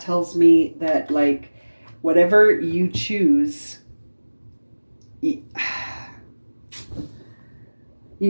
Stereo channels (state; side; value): inverted; both; correlation -1.00